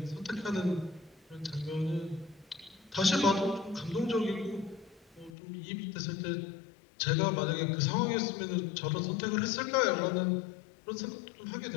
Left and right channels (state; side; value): drops out; right; at 5.4 s